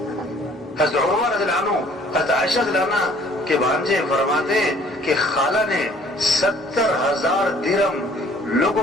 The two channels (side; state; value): both; normal; correlation 0.57